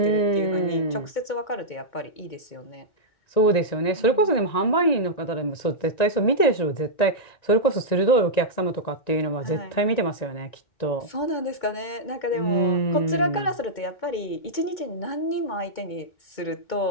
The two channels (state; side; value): late; right; 1.9 ms